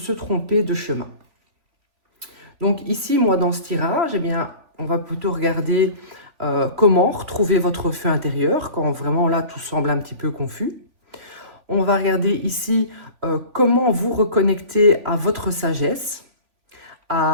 tromper de chemin. Donc ici, moi, dans ce tirage, on va plutôt regarder comment retrouver votre feu intérieur quand vraiment là, tout semble un petit peu confus. On va regarder ici comment vous reconnecter à votre sagesse,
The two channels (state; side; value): late; left; 3.3 ms